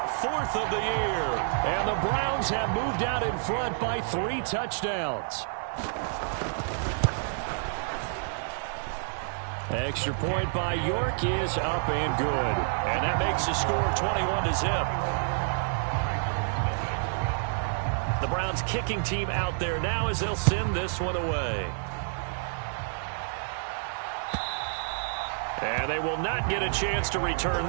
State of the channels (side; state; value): left; silent; 59 dB below the other